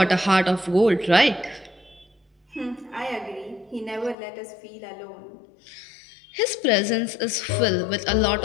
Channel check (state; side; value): drops out; right; at 4.2 s